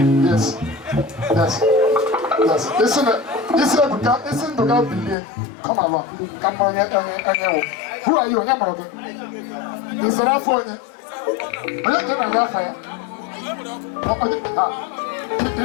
Yes. Listen to God be come along. Come on, who are you? Is that for you? I don't know that fire.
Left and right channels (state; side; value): drops out; right; at 5.2 s